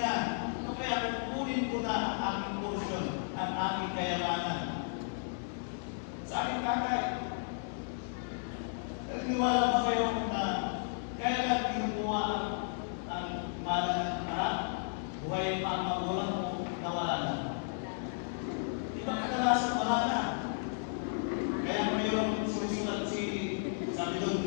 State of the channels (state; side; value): silent; right; digital silence